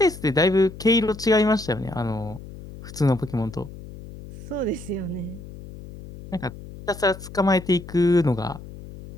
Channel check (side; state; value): left; noise; hum, 15 dB below the sound